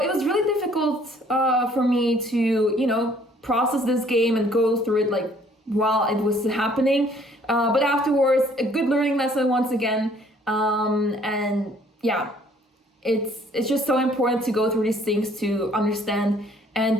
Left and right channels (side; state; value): both; normal; correlation 0.60